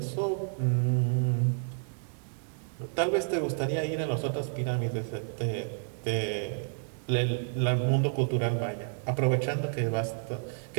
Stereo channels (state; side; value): silent; left; digital silence